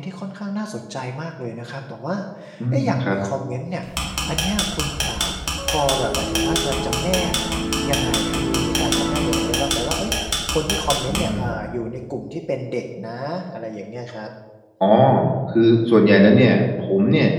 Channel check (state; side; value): identical; both; correlation 1.00